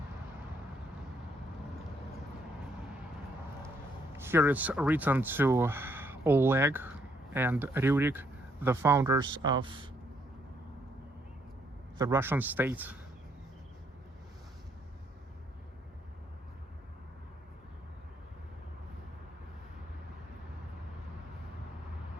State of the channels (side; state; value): both; normal; correlation 0.71